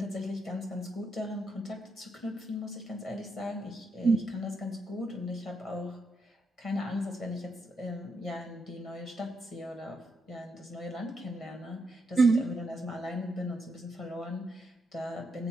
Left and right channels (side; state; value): both; normal; correlation 0.81